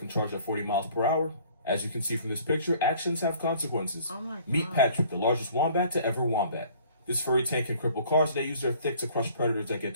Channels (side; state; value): both; inverted; correlation -0.54